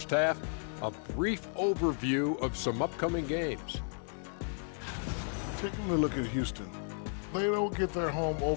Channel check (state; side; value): silent; right; 55 dB below the other